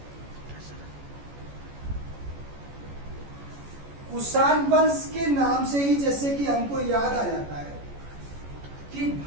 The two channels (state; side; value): late; left; 14 ms